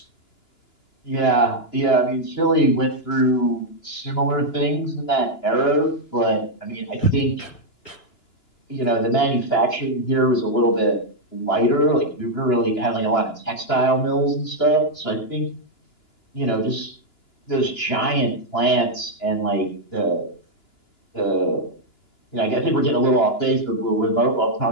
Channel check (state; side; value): late; right; 2.9 ms